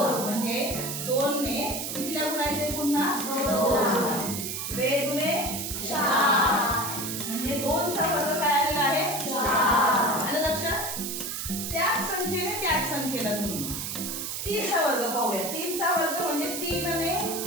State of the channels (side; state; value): right; noise; hiss, 4 dB below the sound